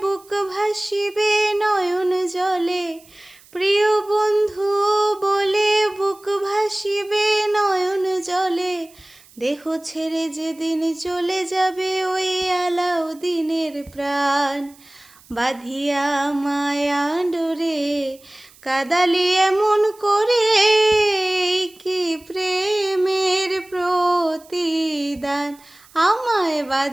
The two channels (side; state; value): right; noise; hiss, 26 dB below the sound